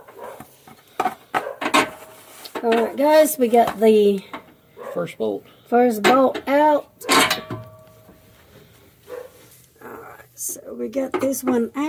Alright guys, we got the first bolt out. Alright, so we got this one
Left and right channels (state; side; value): identical; both; correlation 1.00